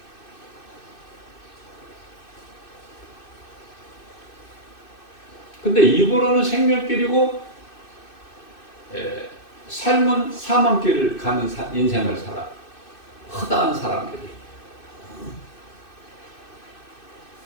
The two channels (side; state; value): right; late; 2.6 ms